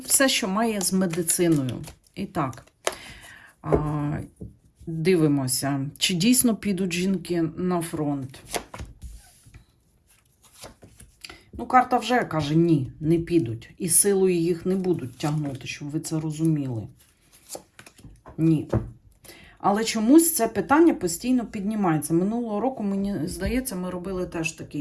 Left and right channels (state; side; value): identical; both; correlation 1.00